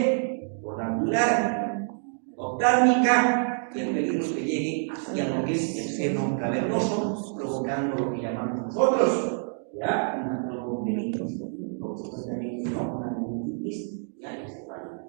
Por la angular, oftálmica, y el peligro es que llegue hacia lo que es el seno cavernoso, provocando lo que llamamos nosotros, ¿ya? Una trombomelitis, una meningitis, ya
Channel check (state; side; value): silent; left; 60 dB below the other